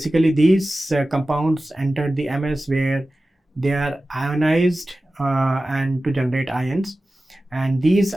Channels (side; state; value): both; normal; correlation 0.95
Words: these compounds enter the MS, where they are ionized and to generate ions, and these